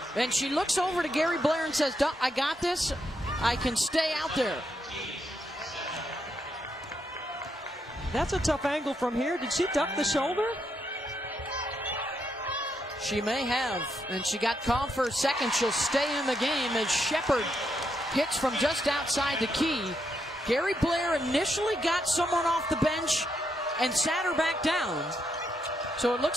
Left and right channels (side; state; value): both; normal; correlation 0.80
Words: And she looks over to Gary Blair and says, I got this. I can stay out there. That's a tough angle from here. Did she duck the shoulder? She may have. And she got called for a second. She'll stay in the game as Shepard hits from just outside the key. Gary Blair initially got someone off the bench and sat her back down. So it